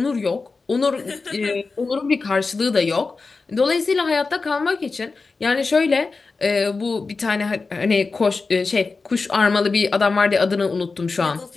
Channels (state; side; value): quieter; right; 4.1 dB